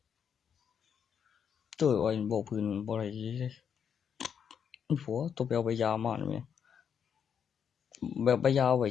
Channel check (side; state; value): right; quieter; 7.6 dB